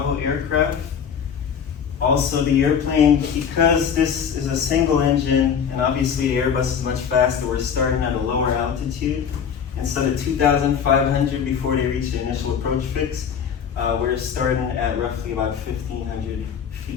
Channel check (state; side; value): quieter; right; 7.4 dB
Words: aircraft. Also, the airplane, because this is a single engine, and obviously the Airbus is much faster, we're starting at a lower altitude. Instead of 2,500 before they reach the initial approach fix, we're starting at roughly about 1,500